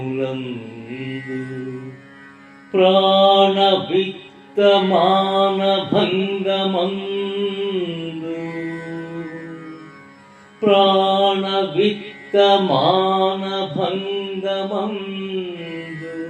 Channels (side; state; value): both; identical; correlation 1.00